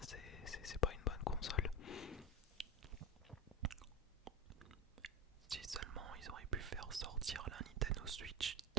c'est pas une bonne console. Si seulement ils auraient pu faire sortir la Nintendo Switch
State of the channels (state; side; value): normal; both; correlation 0.21